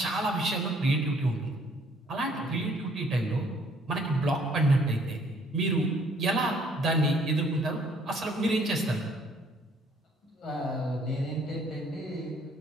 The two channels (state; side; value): normal; both; correlation 0.62